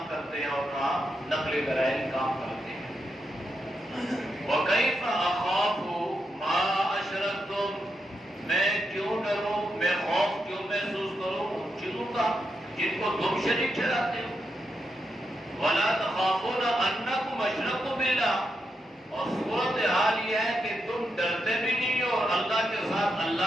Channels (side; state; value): both; normal; correlation 0.84